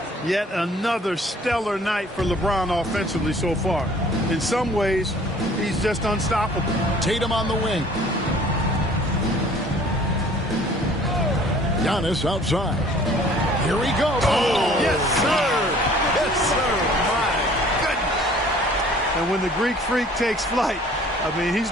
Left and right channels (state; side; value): normal; both; correlation 0.53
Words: Yet another stellar night for LeBron offensively so far. In some ways, he's just unstoppable. Tatum on the wing. Giannis outside. Here he goes. Oh, yes, sir. Yes, sir. My goodness. And when the Greek Freak takes flight, I mean, he's